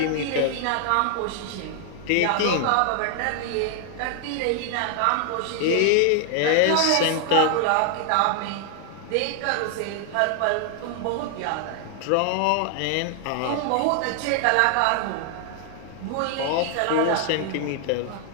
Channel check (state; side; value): different; both; correlation 0.00